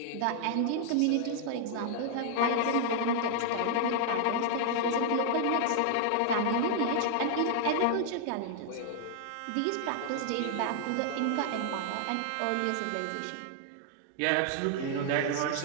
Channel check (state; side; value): different; both; correlation 0.00